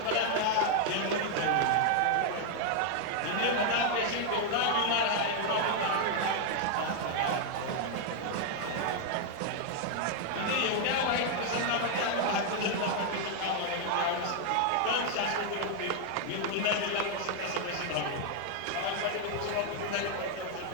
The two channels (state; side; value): different; both; correlation 0.00